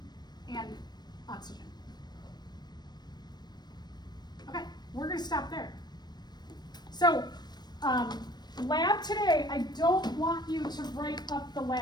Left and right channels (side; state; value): right; late; 0.20 ms